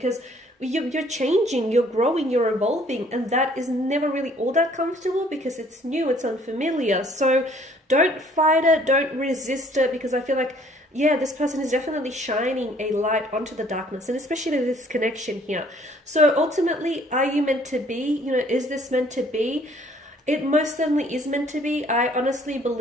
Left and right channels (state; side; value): normal; both; correlation 0.59